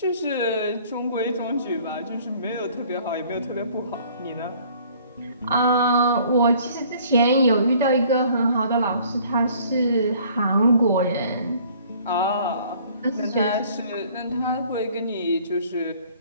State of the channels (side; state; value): both; inverted; correlation -0.56